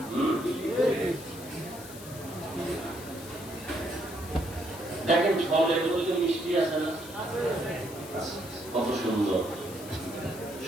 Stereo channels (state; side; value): noise; left; hiss, 15 dB below the sound